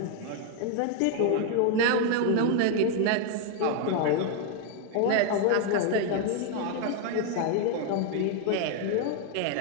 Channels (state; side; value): different; both; correlation 0.01